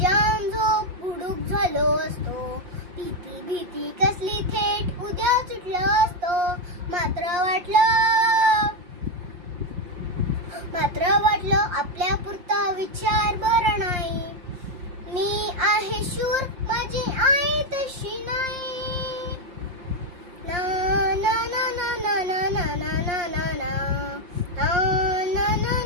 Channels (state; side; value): late; left; 5.7 ms